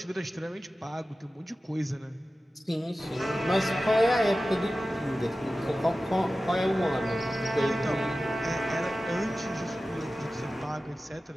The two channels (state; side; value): normal; both; correlation 0.95